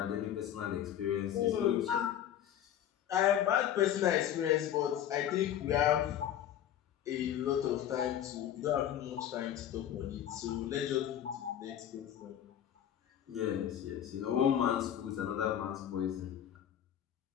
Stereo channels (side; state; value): right; quieter; 10.5 dB